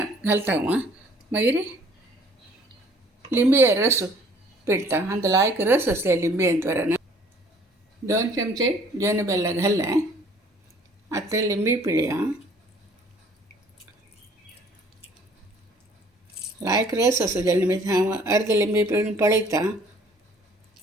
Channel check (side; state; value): both; normal; correlation 0.57